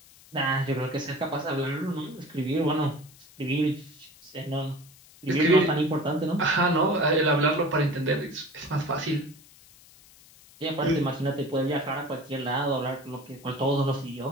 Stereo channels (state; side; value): noise; left; hiss, 24 dB below the sound